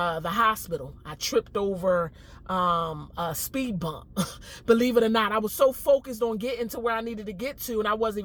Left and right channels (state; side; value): identical; both; correlation 1.00